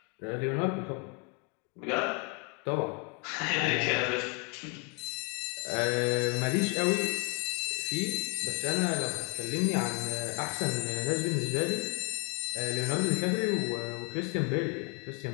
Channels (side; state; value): right; quieter; 30.3 dB